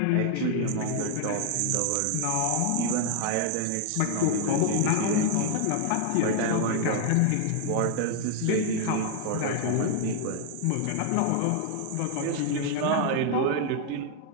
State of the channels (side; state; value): both; different; correlation 0.00